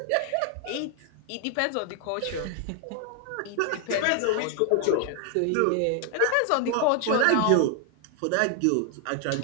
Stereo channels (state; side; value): different; both; correlation 0.00